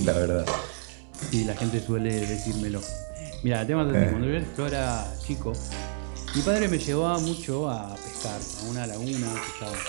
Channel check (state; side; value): silent; left; digital silence